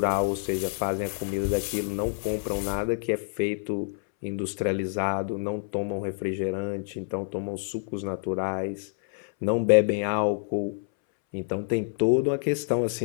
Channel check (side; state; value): right; silent; 60 dB below the other